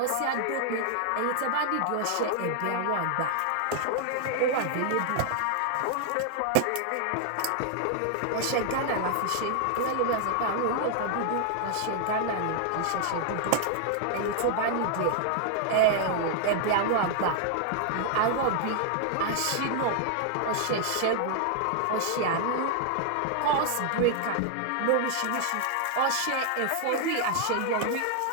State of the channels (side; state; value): both; different; correlation 0.00